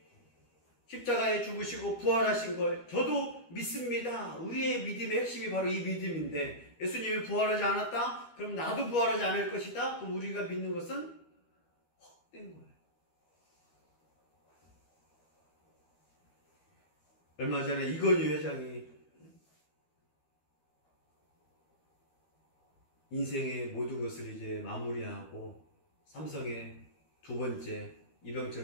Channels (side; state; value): right; late; 13 ms